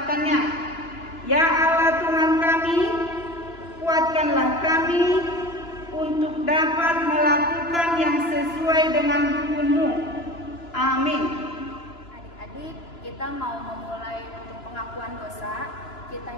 Ya Allah Tuhan kami, kuatkanlah kami untuk dapat melakukan yang sesuai dengan hukum-Mu. Amin. Adik-adik, kita kita mau memulai untuk pengakuan dosa, kita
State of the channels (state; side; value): late; right; 2.9 ms